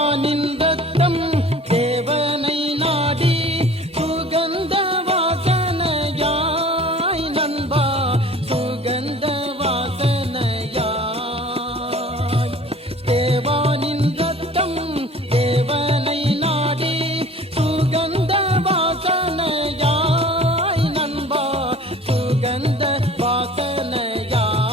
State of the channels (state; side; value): normal; both; correlation 0.46